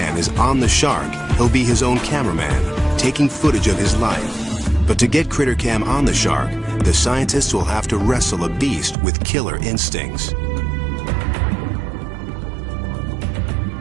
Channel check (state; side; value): drops out; left; at 9.0 s